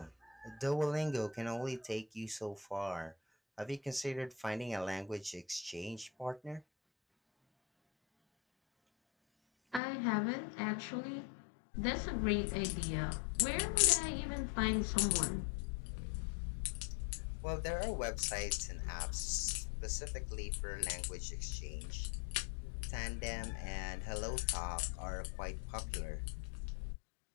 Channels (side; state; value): right; drops out; at 9.8 s